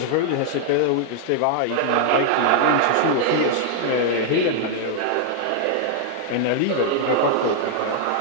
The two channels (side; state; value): both; different; correlation 0.00